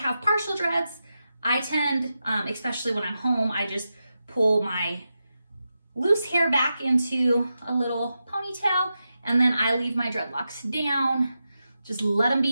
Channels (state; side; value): inverted; both; correlation -0.90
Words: partial dreads. I tend, especially when I'm home, I just pull my loose hair back into a little ponytail, and then I leave my dreadlocks down. Just let them